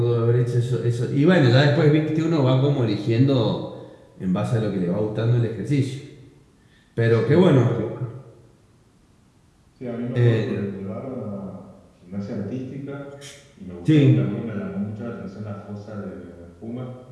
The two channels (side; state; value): both; identical; correlation 1.00